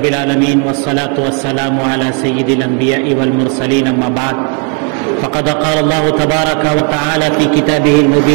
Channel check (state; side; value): quieter; left; 38.4 dB